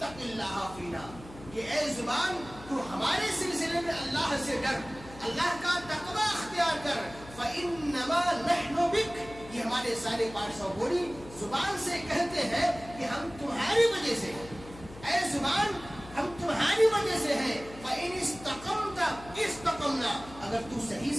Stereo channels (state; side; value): noise; left; hum, 17 dB below the sound